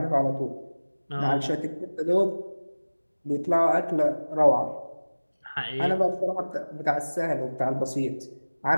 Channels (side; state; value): both; inverted; correlation -1.00